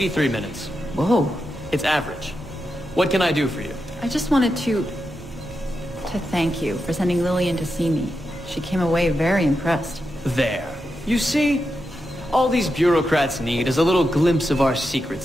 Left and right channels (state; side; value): normal; both; correlation 0.87